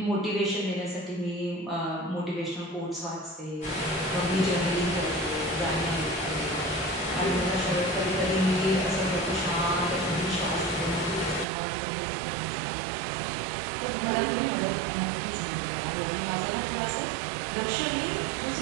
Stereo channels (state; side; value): drops out; left; at 11.5 s